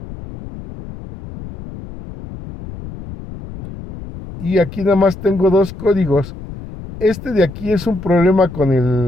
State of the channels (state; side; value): noise; left; rumble, 13 dB below the sound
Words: Y aquí nada más tengo dos códigos. Este de aquí es un problema